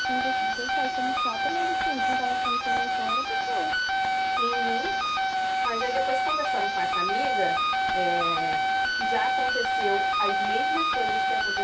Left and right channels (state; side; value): identical; both; correlation 1.00